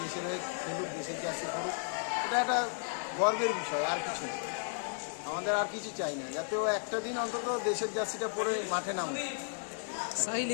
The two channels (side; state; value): right; silent; digital silence